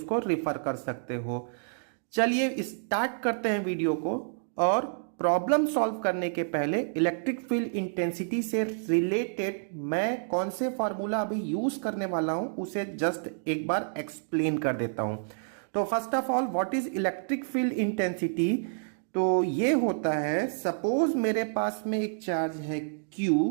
रेफर कर सकते हो। चलिए स्टार्ट करते हैं वीडियो को। और प्रॉब्लम सॉल्व करने के पहले इलेक्ट्रिक फील्ड इंटेंसिटी से रिलेटेड मैं कौन से फार्मूला अभी यूज करने वाला हूं उसे जस्ट एक बार एक्सप्लेन कर देता हूं। तो first of all, what is electric field intensity? तो ये होता है, सपोज मेरे पास में एक चार्ज है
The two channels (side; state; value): left; silent; digital silence